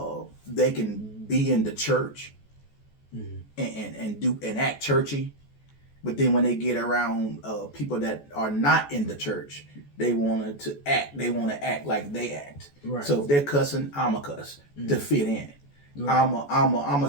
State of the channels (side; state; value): right; late; 14 ms